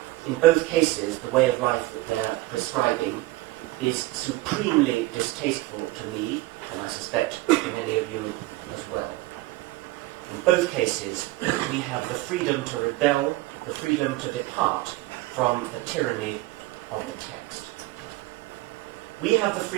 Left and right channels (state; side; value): quieter; left; 18.7 dB